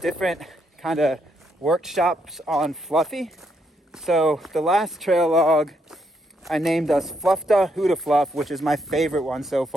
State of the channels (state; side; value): normal; both; correlation 0.76